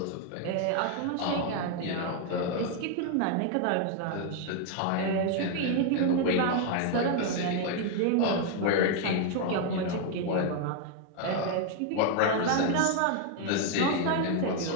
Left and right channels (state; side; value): different; both; correlation 0.01